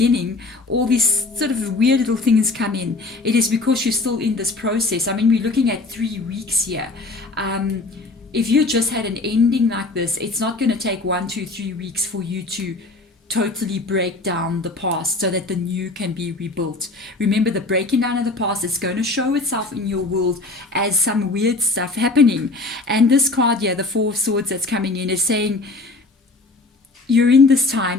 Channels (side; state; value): right; quieter; 3.4 dB